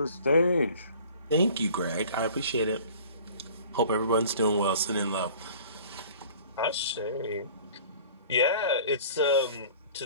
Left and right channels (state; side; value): inverted; both; correlation -0.48